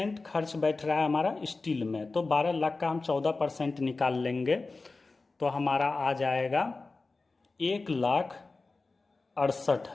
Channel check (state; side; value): quieter; right; 3.7 dB